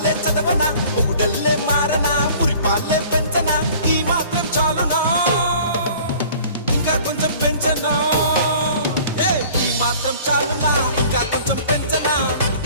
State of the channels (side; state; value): both; inverted; correlation -0.49